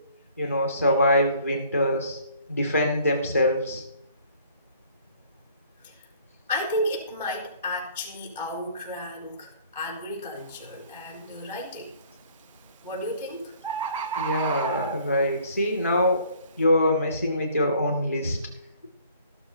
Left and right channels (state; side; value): inverted; both; correlation -0.56